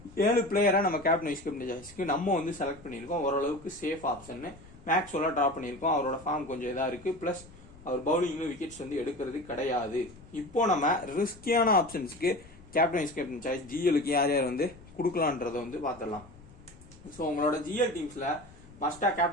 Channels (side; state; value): left; noise; rumble, 22 dB below the sound